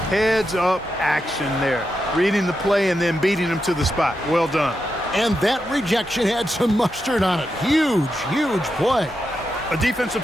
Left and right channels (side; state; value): both; normal; correlation 0.86